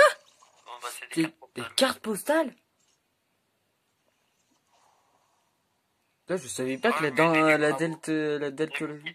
Bon, bah, c'est Des cartes postales? Là, je savais pas que Ouais, dans mais la Le deltologie. musée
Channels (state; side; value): identical; both; correlation 1.00